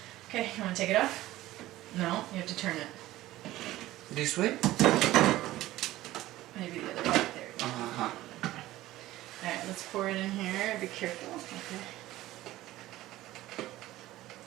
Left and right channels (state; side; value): quieter; left; 16.1 dB